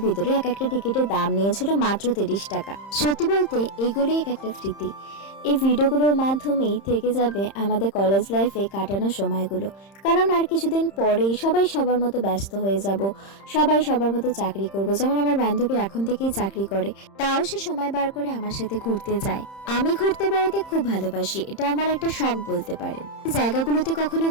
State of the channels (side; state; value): right; late; 30 ms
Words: ভিতরে। এক একটা টিকিটের দাম নিয়েছিল মাত্র 30 টাকা। সত্যি বলতে এগুলোই এক একটা স্মৃতি। এই ভিডিওগুলোর মাধ্যমেই থেকে যাবে আমাদের কলেজ লাইফে কাটানো সময়গুলো, কারণ আর কিছুদিন পরেই সবাই সবার মতো ব্যস্ত হয়ে যাব, সবাই সবার মতো চাকরি করব। যেমন আমার বান্ধবী এখন থেকেই চাকরি করে, তাও সে সময় বার করে আমার সাথে ঘুরতে যায়। আমি ঘুরতে বেড়াতে খুব ভালোবাসি, এটা আমার একটা শখ বলতে পারেন। জায়গাগুলোতে কখনো